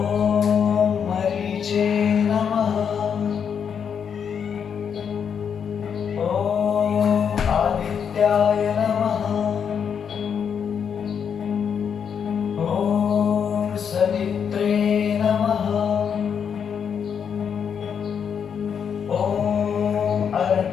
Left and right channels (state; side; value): quieter; right; 7.4 dB